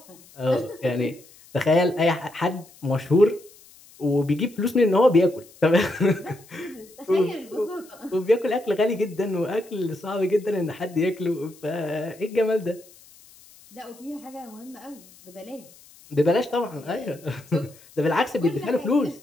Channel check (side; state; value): left; noise; hiss, 24 dB below the sound